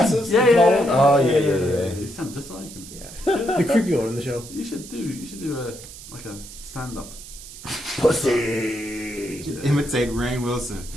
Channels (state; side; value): noise; right; hiss, 15 dB below the sound